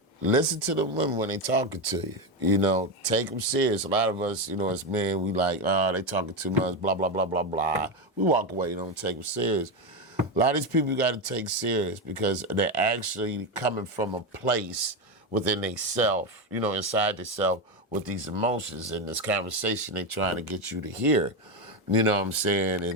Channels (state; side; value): normal; both; correlation 0.12